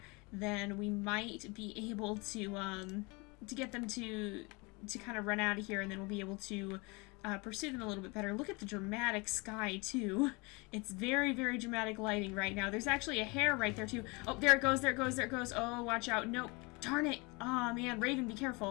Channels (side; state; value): right; quieter; 27.7 dB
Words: then we might be able to get them to kind of run out of here, and then we'll be able to pursue them a little bit better. Look at the dramatic sky, too. It's very, very dramatic lighting right now. There's actually a hare right there, too. Oh, there it goes, there it goes, there it goes. Oh, watch out. Nope. Darn it. Oh, man. Raven, be